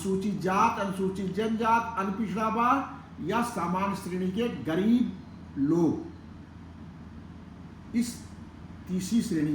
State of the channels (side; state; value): both; identical; correlation 1.00